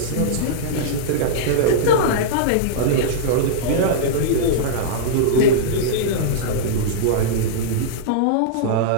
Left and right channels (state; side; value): different; both; correlation -0.03